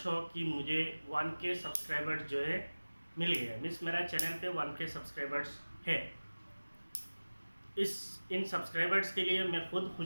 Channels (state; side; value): inverted; both; correlation -1.00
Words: हो कि मुझे 1K सब्सक्राइबर्स जो है मिल गया है। मीन्स मेरा चैनल पे 1K सब्सक्राइबर्स है। इन सब्सक्राइबर्स के लिए मैं खुद